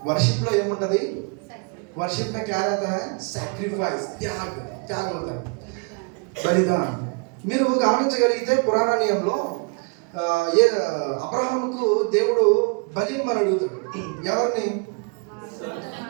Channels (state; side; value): quieter; left; 33.5 dB